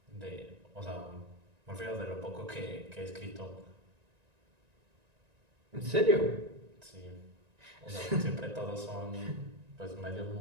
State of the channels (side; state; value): left; late; 1.9 ms